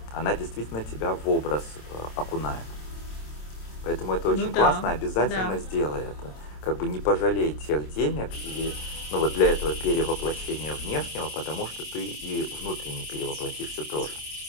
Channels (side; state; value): right; late; 27 ms